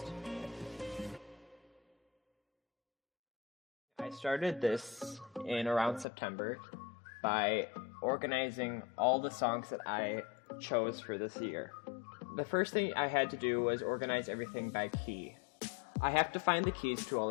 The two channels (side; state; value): right; drops out; at 6.1 s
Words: I started this in around September by organizing all the songs that I chose for this year. The first thing I had to do was organize everything by key. I have to find the keys to all